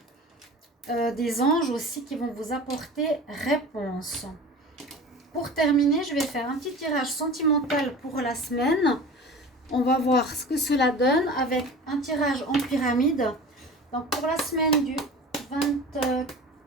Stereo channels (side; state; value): both; normal; correlation 0.37